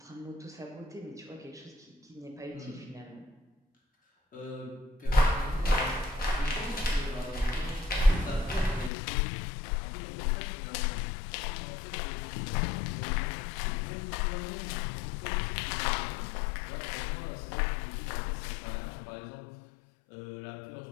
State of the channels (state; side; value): drops out; right; at 8.9 s